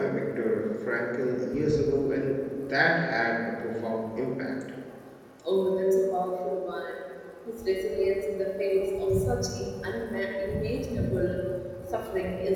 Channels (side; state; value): both; identical; correlation 1.00